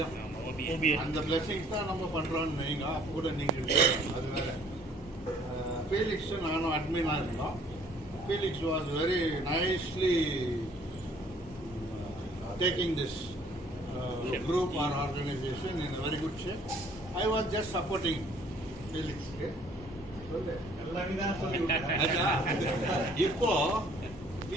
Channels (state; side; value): normal; both; correlation 0.58